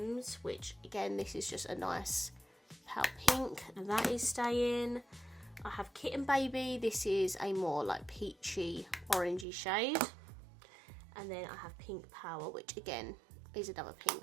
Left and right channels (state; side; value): drops out; left; at 9.5 s